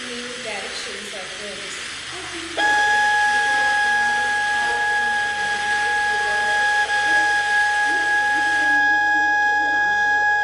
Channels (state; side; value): identical; both; correlation 1.00